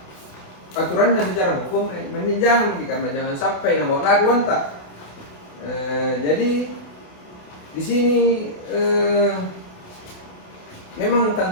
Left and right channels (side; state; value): right; late; 28 ms